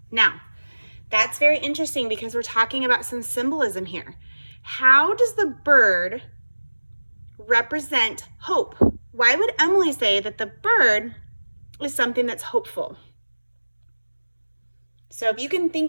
Now, that's very interesting because we're talking about some symbolism here. How does the bird represent hope? Why would Emily say that the bird is something that's hopeful? So if you can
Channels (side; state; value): both; inverted; correlation -1.00